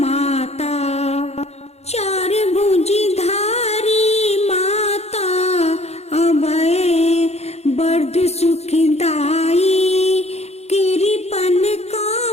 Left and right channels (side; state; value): right; late; 0.31 ms